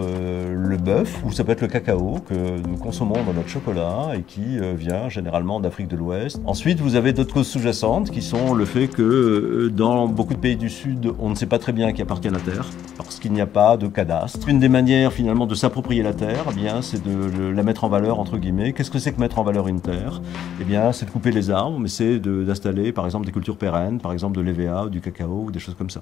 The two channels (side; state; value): right; quieter; 10.1 dB